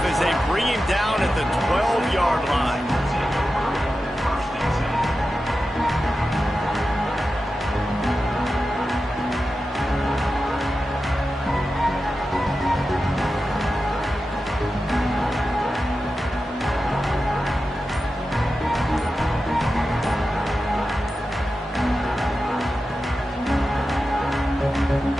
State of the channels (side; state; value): both; normal; correlation 0.92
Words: as they bring him down at the 12-yard line.